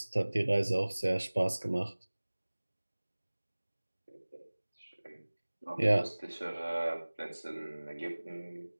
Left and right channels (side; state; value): both; inverted; correlation -1.00